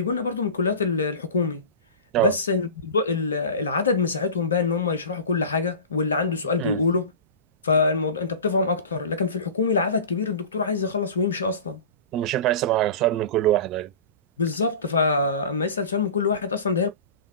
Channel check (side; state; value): both; inverted; correlation -0.33